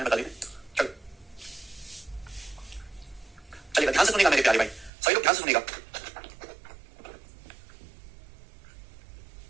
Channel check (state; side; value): drops out; left; at 4.9 s